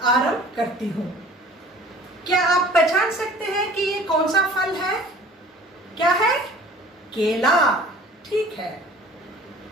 आरंभ करती हूँ। क्या आप पहचान सकते हैं कि ये कौन सा फल है? क्या है? केला। ठीक है।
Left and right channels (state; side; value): normal; both; correlation 0.47